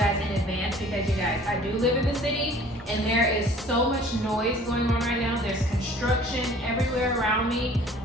in advance, because you guys, I do live in the city and there is so much noise going on right now. There's construction everywhere around me.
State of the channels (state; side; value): normal; both; correlation 0.51